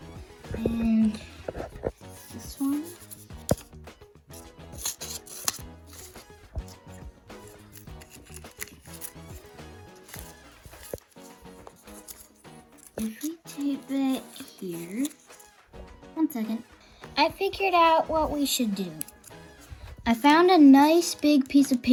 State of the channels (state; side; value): identical; both; correlation 1.00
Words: And this one. If we tape it here, 1 second. I figured out what we should do. I found a nice big piece of